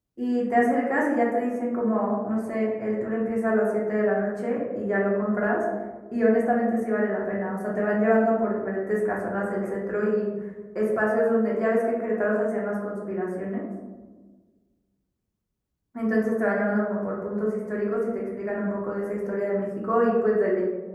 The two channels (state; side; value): identical; both; correlation 1.00